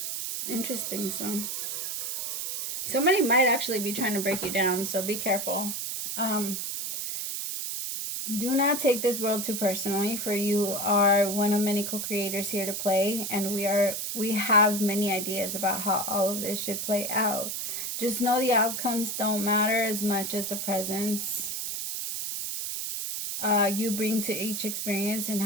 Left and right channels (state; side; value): noise; right; hiss, 3 dB below the sound